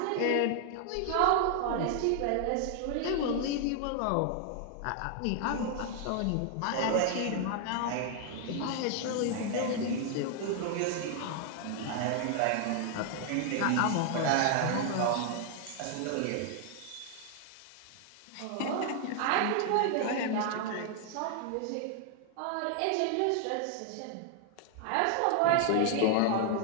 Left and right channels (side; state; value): both; different; correlation 0.00